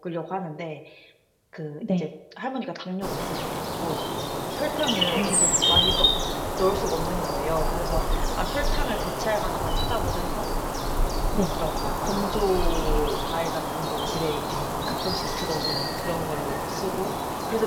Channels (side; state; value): both; identical; correlation 1.00